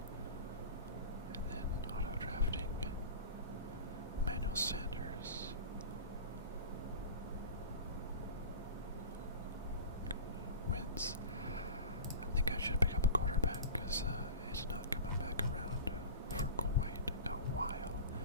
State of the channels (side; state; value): both; inverted; correlation -0.34